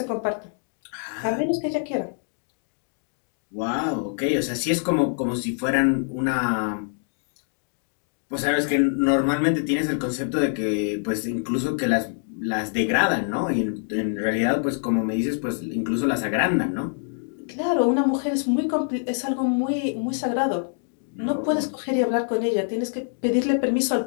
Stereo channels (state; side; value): silent; right; 62 dB below the other